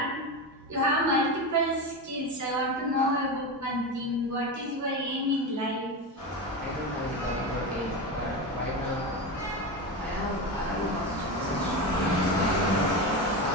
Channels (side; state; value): both; normal; correlation 0.20